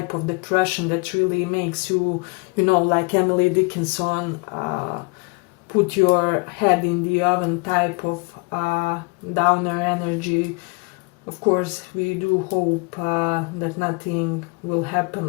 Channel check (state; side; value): quieter; right; 30.7 dB